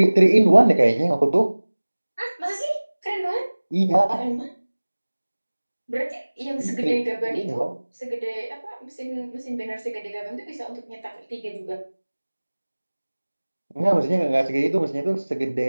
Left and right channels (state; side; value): inverted; both; correlation -1.00